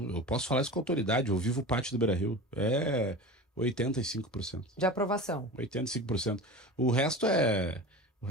posso falar isso com autoridade. Eu vivo o pátio do Beira-Rio. É 85%. De aprovação. 85%. O resto é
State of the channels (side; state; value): both; normal; correlation 0.32